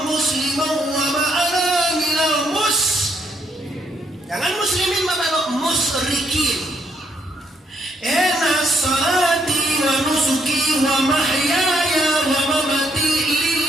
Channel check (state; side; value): normal; both; correlation 0.72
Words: musliman wa ma ana minal jangan muslimin Bapak musyrikin. Inna salati wa nusuki wa mahyaya wa mamati